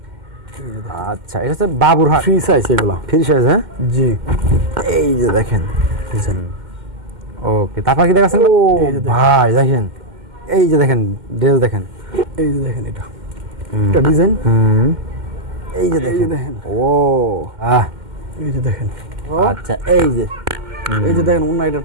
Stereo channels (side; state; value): left; late; 2.1 ms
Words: আচ্ছা, এটা হচ্ছে বাবুরহাট ফ্রি সাইজ, এগুলো ফ্রি সাইজ। হ্যাঁ জি, এই যে দেখেন। ওকে, তারপর কি দেখাচ্ছেন? ও ভাই দেখেন, এই যে দেখেন ড্রেস দেখেন, এই যে দেখেন এটা ডিজাইন, এই যে দেখেন। ও এই যে দেখেন। আচ্ছা, এই যে দেখেন ওনা, এটার